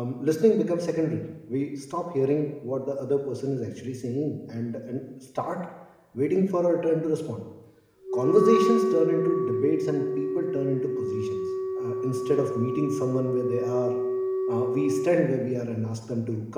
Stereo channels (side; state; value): both; identical; correlation 1.00